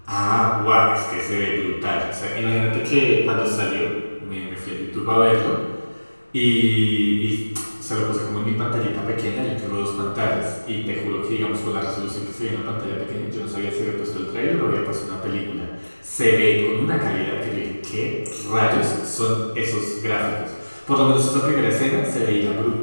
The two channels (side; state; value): both; inverted; correlation -1.00